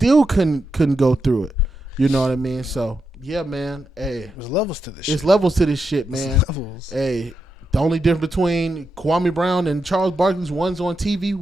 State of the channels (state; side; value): normal; both; correlation 0.85